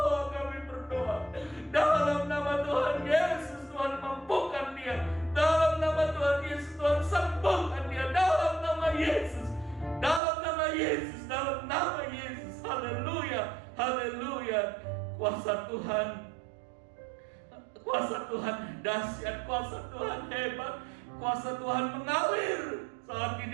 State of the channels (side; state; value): left; drops out; at 10.2 s